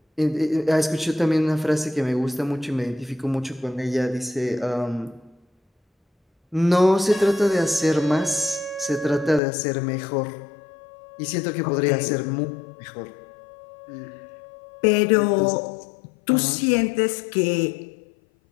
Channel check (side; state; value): right; drops out; at 9.4 s